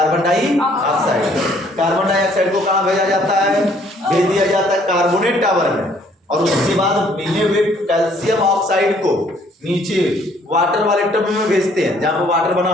डाइऑक्साइड। कार्बन डाइऑक्साइड को कहाँ भेजा जाता है? भेज दिया जाता है कार्बोनेट टावर में और उसके बाद मिले हुए कैल्शियम ऑक्साइड को नीचे वाटर वाले टब में भेजते हैं, जहां पर वाटर बना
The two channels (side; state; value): both; normal; correlation 0.62